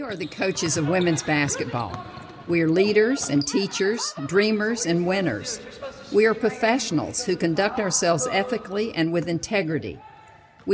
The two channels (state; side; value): identical; both; correlation 1.00